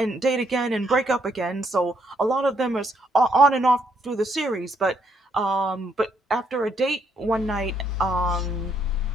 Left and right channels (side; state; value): both; normal; correlation 0.72